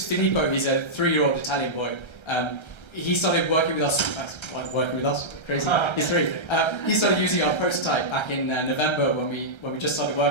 Filippo. He's a 3-year-old Italian boy. He started working with us. Crazy. He's 3. He started using our prototype back in November when we just started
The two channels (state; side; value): late; right; 1.3 ms